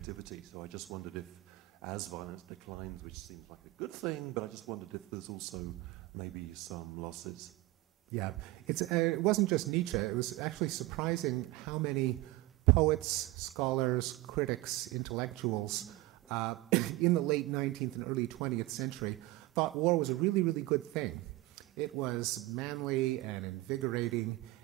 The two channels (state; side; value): quieter; left; 19.2 dB